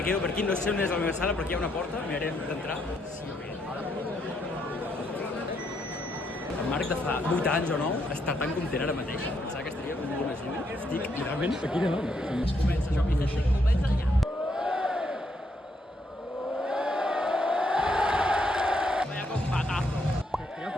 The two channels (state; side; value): normal; both; correlation 0.75